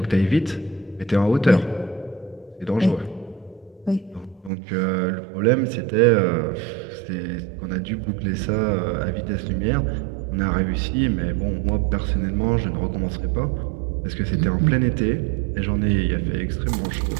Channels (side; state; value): left; drops out; at 4.5 s